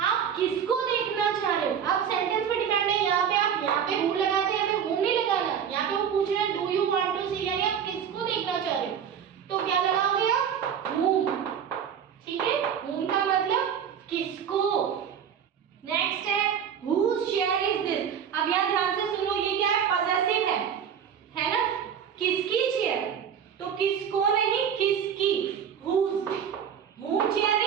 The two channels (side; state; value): left; quieter; 8.1 dB